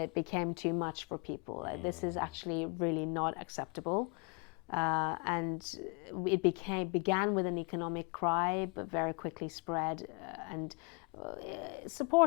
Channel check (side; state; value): right; quieter; 34.6 dB